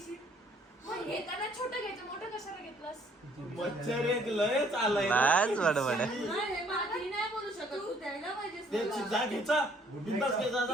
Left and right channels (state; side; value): normal; both; correlation 0.62